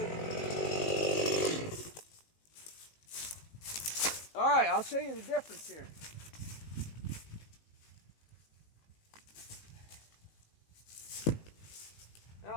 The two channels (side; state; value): right; late; 19 ms